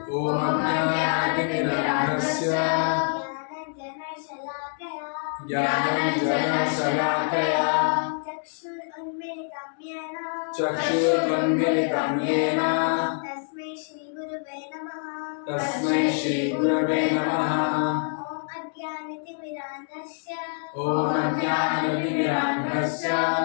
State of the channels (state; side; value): silent; right; 61 dB below the other